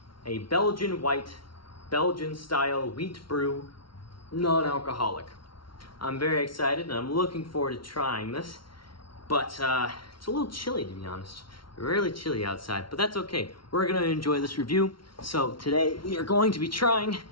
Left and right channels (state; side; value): late; right; 0.74 ms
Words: A Belgian white, Belgian style wheat brew, non-alcoholic. I'm very excited and I'm looking forward to trying this. But it's a little chilly, to be honest. Really chilly outside, but that's okay. We're gonna enjoy this review. So today we are going to be trying